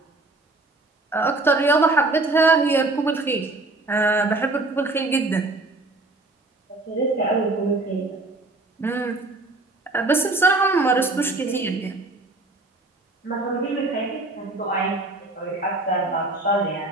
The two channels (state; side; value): quieter; left; 3.0 dB